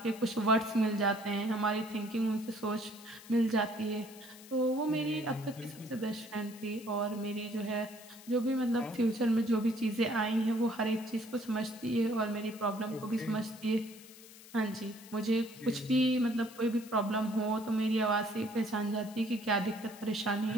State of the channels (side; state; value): left; noise; hiss, 19 dB below the sound